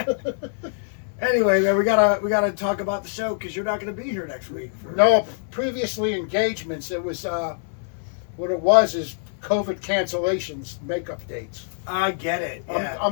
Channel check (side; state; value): right; silent; 62 dB below the other